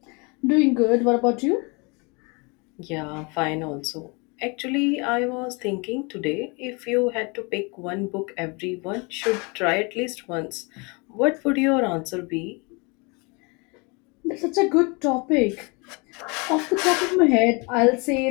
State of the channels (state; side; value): quieter; right; 29.9 dB